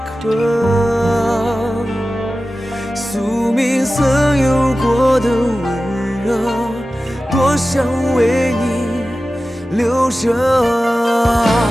刻，宿命曾有过的温热，多想为你留着。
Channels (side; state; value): both; normal; correlation 0.95